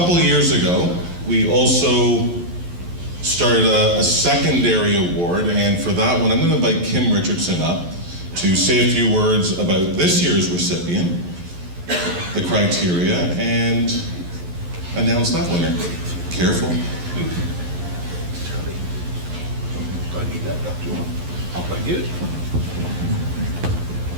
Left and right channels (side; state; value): left; late; 11 ms